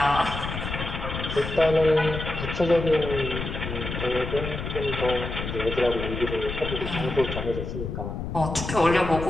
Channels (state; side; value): noise; left; rumble, 5 dB below the sound